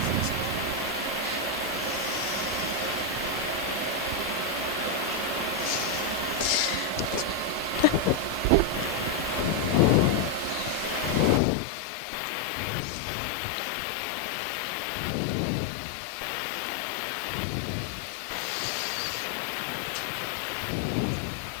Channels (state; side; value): drops out; right; at 11.4 s